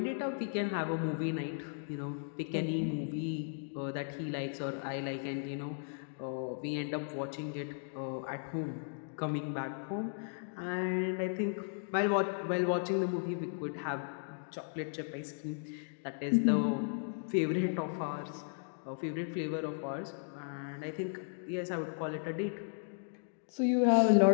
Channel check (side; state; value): right; silent; digital silence